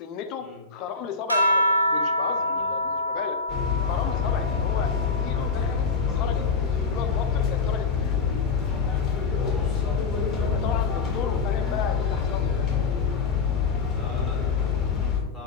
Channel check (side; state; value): right; quieter; 4.5 dB